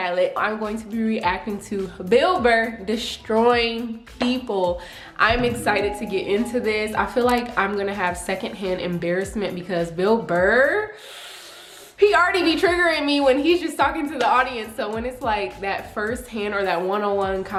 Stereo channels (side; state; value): both; identical; correlation 1.00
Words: I'm going to be reacting to Burr destroying people. I'm excited to get into this. I feel like I'm gonna have secondhand embarrassment because Burr, he already be triggering me when he's just talking to the audience. So when it's like that first hand or that one-on-one